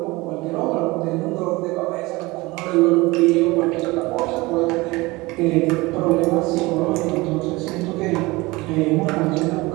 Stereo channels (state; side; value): quieter; left; 22.1 dB